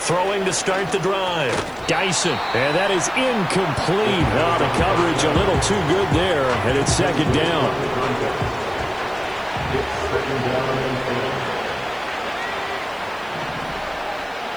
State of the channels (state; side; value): noise; right; hiss, 28 dB below the sound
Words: Throwing to start the drive. Dyson. And that is incomplete. Oh, the coverage a little too good there. And it's second down.